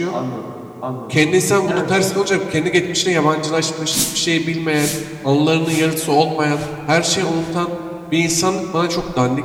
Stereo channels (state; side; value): identical; both; correlation 1.00